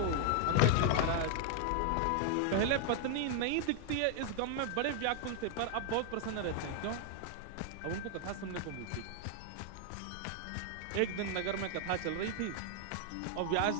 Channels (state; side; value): different; both; correlation 0.00